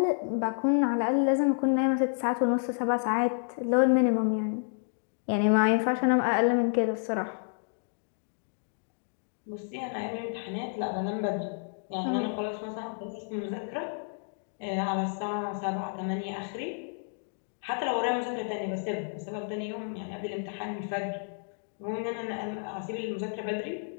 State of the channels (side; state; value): right; silent; digital silence